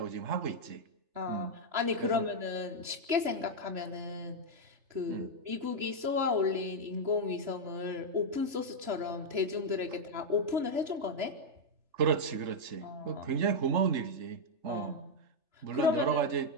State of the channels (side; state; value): left; late; 3.4 ms